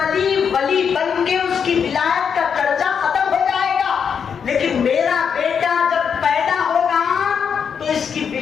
بن کے اس کی ولایت کا چرچا ختم ہو جائے گا، لیکن میرا بیٹا جب پیدا ہوگا تو اس کی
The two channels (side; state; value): right; quieter; 7.0 dB